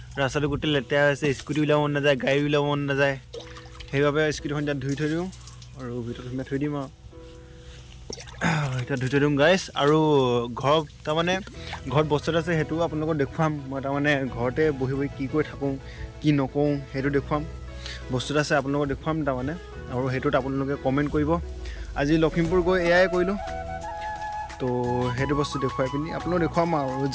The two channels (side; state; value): both; identical; correlation 1.00